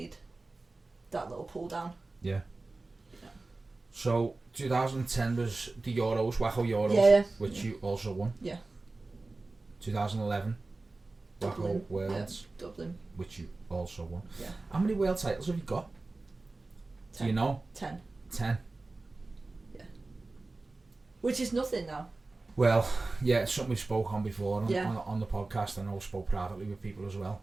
that little pull down. Yeah. So 2010 was the Euros, Waco Euros, which you also won. Yeah. 2011, Waco Worlds, Dublin, which you also won. Yeah. How many world titles have you got? 10. Do you know? 10. 10. Yeah. Which is nothing now. Well, yeah, it's something we spoke on before on the podcast. I know I spoke privately with people as well,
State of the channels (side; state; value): left; quieter; 3.3 dB